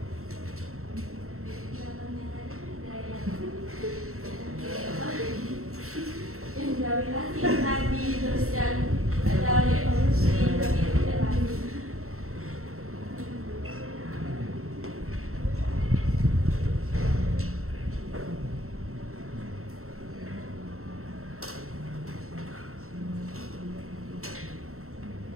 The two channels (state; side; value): late; left; 0.63 ms